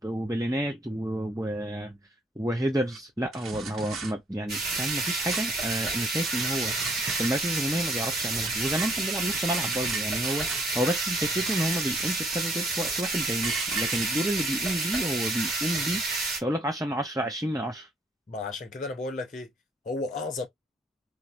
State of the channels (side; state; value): both; normal; correlation 0.66